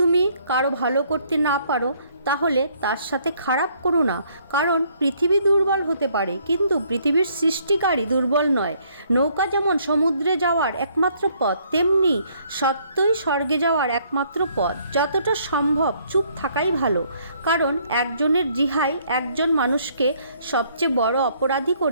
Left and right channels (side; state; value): both; inverted; correlation -0.66